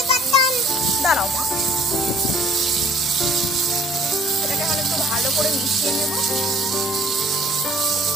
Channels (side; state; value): both; normal; correlation 0.55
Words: দাঁড়াও মা, এটাকে এখন একটু ভালো করে মিশিয়ে নেব।